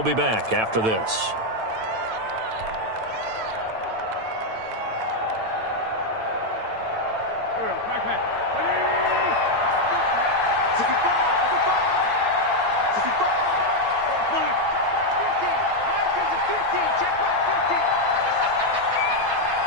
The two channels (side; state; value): left; late; 9.1 ms